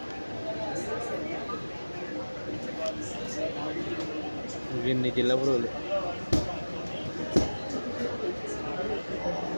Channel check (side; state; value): both; inverted; correlation -1.00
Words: ఇన్ని జిల్లా పురుగులు.